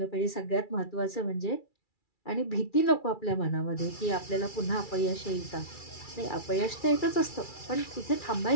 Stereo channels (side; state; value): right; late; 2.3 ms